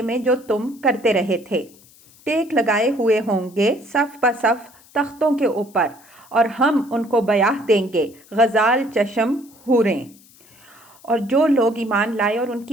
میں جو تم کرتے رہے تھے۔ ٹیک لگائے ہوئے ہوں گے صف بصف تختوں کے اوپر، اور ہم ان کو بیاہ دیں گے غزال چشم حوریں۔ اور جو لوگ ایمان لائے اور ان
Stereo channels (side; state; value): left; noise; hiss, 26 dB below the sound